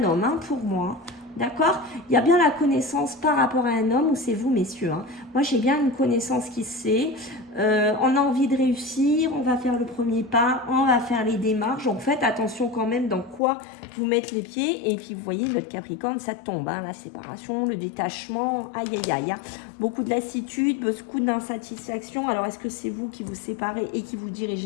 homme, hein, pour moi. D'accord? Il y a bien la connaissance par rapport à un homme, ou c'est vous, messieurs. Hein. Moi, j'ai bien une connaissance qui sait. On a envie de réussir, on va faire le premier pas, on va faire les démarches. Donc, faites attention quand même dans quoi vous mettre les pieds. Et puis, vous voyez, votre Capricorne, ça tombe. Hein, la séparation, le détachement, aïe, aïe, aïe. Hein. Beaucoup de lassitude, beaucoup d'insatisfaction. Alors, est-ce que c'est vous qui vous séparez et qui vous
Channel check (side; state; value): right; drops out; at 13.4 s